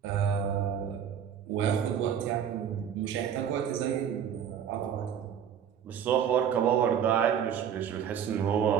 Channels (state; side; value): quieter; left; 8.6 dB